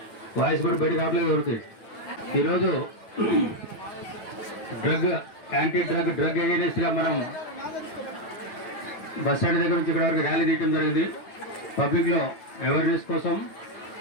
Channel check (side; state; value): right; late; 9.4 ms